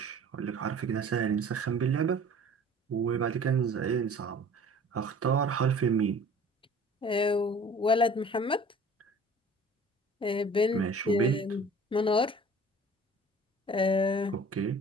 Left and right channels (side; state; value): both; normal; correlation 0.47